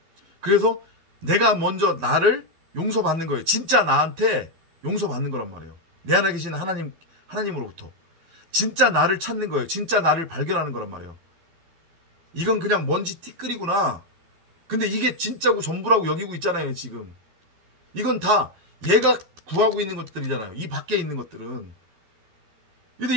그래서 내가 먼저 나를 용서받는 거예요. 진짜 나한테 용서받는 거란 말이에요. 내 안에 계신 하나님으로부터. 진짜 나를 찾는 거예요. 진짜 나를 발견하는 거란 말이에요. 이건 그냥 먼지 티끌이구나. 근데 이게 진짜고 전부라고 여기고 있잖아요, 지금. 이건 다 얘가 구하고 있는 것들이잖아요. 이 밖에 있는 것들은. 근데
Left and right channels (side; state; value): left; late; 12 ms